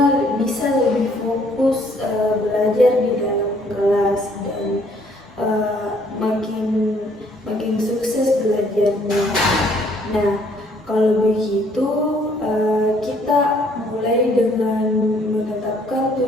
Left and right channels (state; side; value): normal; both; correlation 0.63